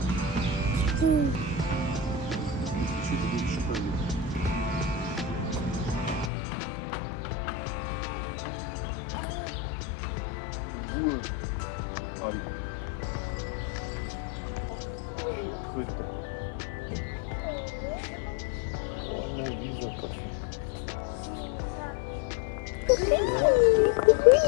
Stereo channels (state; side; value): drops out; right; at 6.3 s